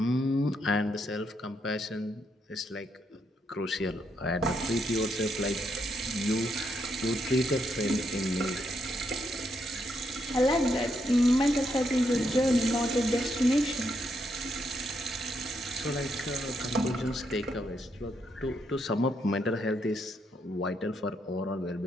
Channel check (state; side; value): normal; both; correlation 0.78